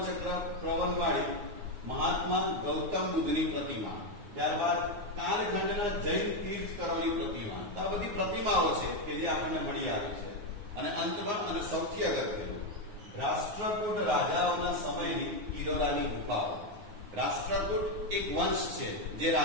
પ્રવનવાળી મહાત્મા ગૌતમ બુદ્ધની પ્રતિમા. ત્યારબાદ કાલખંડના જૈન તીર્થકરોની પ્રતિમા. તો આ બધી પ્રતિમાઓ છે કે જે આપણને મળી આવી છે. અને અંતમાં અને સૌથી અગત્યનું રાષ્ટ્રકૂટ રાજાઓના સમયની ઇલોરાની ગુફાઓ. રાષ્ટ્રકૂટ એક વંશ છે, જે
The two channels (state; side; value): late; left; 9.6 ms